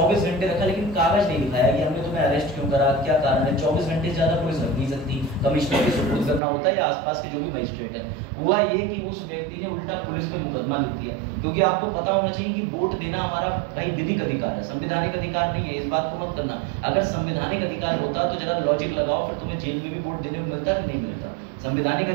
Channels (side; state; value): left; drops out; at 6.4 s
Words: घंटे रखा, लेकिन कागज नहीं दिखाया कि हमने तुम्हें अरेस्ट क्यों करा, क्या कारण है। 24 घंटे से ज्यादा पुलिस रख नहीं सकती, कमिश्नर के सुपुर्द करना होता है या आसपास के जो भी मजिस्ट्रेट है। हुआ ये कि उस व्यक्ति ने उल्टा पुलिस पे मुकदमा लिख दिया, क्योंकि आपको पता होना चाहिए कि वोट देना हमारा भाई विधिक अधिकार है, संवैधानिक अधिकार नहीं है। इस बात को मत करना। अगर संवैधानिक अधिकार होता तो जरा लॉजिक लगाओ, फिर तुम्हें जेल में भी वोट देने को मिलता कि नहीं मिलता। संवैधानिक